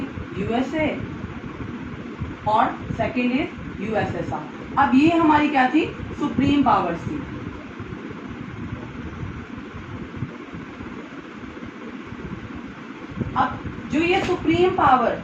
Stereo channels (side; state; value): both; identical; correlation 1.00